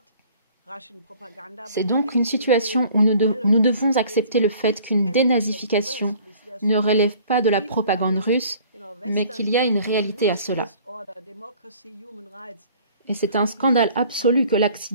C'est donc une situation où nous devons accepter le fait qu'une dénazification ne relève pas de la propagande russe, mais qu'il y a une réalité à cela. Et c'est un scandale absolu que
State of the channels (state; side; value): inverted; both; correlation -0.52